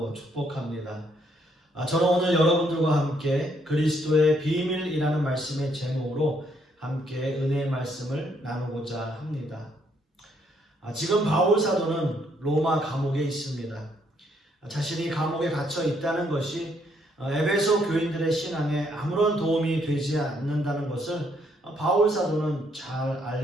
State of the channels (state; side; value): normal; both; correlation 0.71